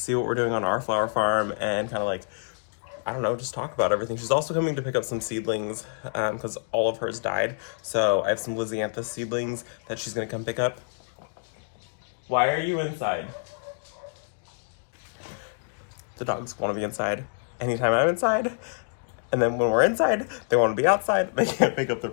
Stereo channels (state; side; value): silent; right; digital silence